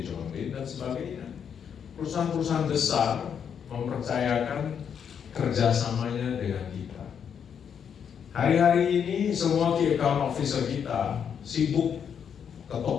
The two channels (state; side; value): quieter; right; 7.7 dB